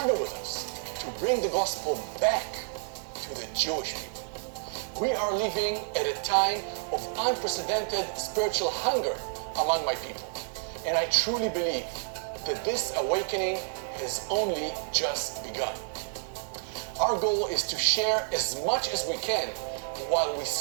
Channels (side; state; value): left; silent; digital silence